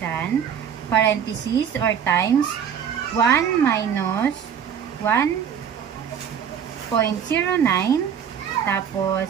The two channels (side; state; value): left; quieter; 8.1 dB